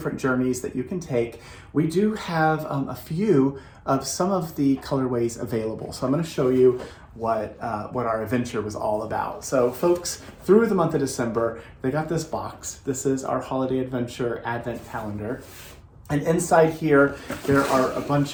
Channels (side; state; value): both; identical; correlation 1.00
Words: journeys that you can take. We do have a few of some of the colorways available. So I'm going to show you what our adventure was all about. So folks, through the month of December, they got this box. This is our holiday adventure advent calendar. And inside here, there are a bunch